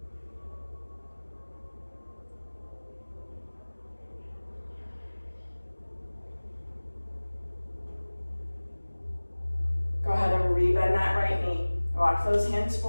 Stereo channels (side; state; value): both; inverted; correlation -1.00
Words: Go ahead and rebend that right knee. Walk those hands